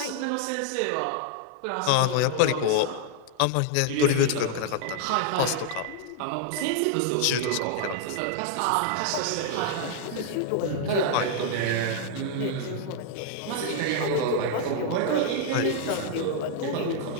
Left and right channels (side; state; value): both; different; correlation 0.00